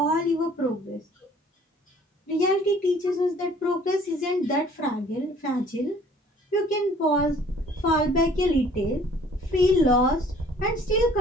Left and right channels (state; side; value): normal; both; correlation 0.55